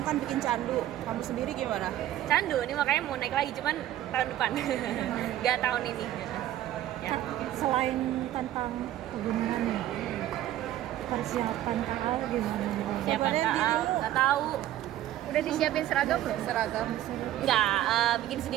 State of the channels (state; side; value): quieter; left; 13.2 dB